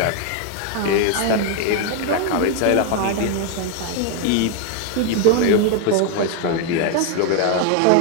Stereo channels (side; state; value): both; different; correlation 0.01